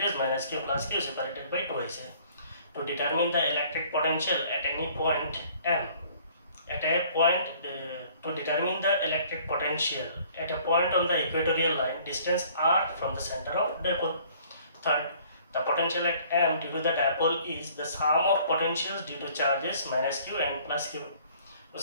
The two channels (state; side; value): inverted; both; correlation -0.56